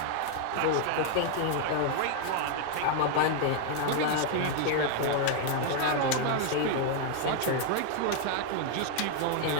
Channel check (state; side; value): different; both; correlation 0.00